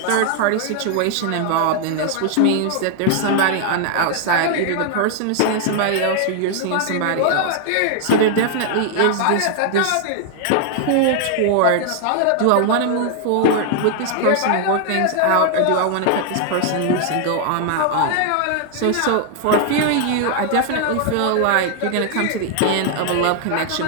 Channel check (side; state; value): both; different; correlation 0.00